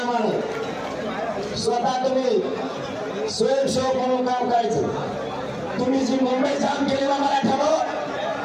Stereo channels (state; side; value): identical; both; correlation 1.00